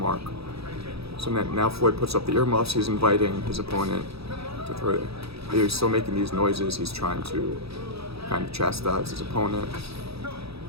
So now Floyd puts up the earmuffs. He's inviting his opponent to throw it. He's still making these noises. He's trying to kind of chastise his opponent.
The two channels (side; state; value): left; late; 0.77 ms